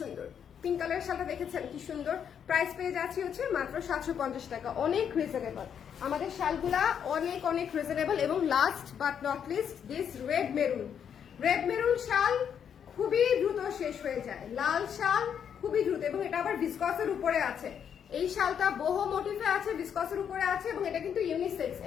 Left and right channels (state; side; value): quieter; right; 8.1 dB